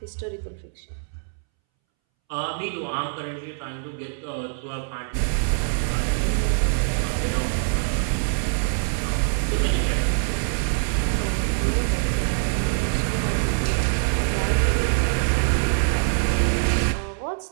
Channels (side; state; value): left; silent; 63 dB below the other